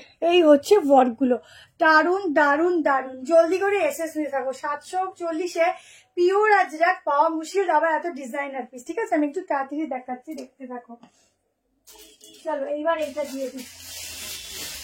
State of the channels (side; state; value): both; identical; correlation 1.00